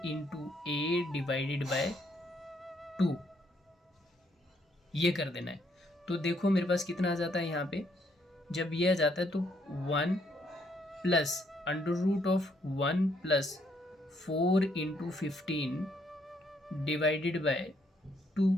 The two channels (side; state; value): both; normal; correlation 0.71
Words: A divided by 2, ये कर देना है। तो देखो मेरे पास कितना आ जाता है यहाँ पे, जब ये आ जाता है तो 1 plus under root of 1 plus 4 into 15 divided by 2।